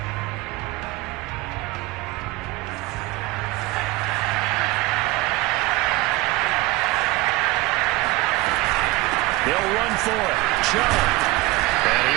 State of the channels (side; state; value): left; quieter; 20.2 dB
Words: They'll run for it. Chubb. And